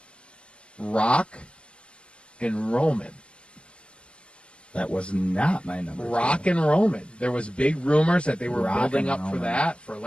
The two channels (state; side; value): late; right; 0.052 ms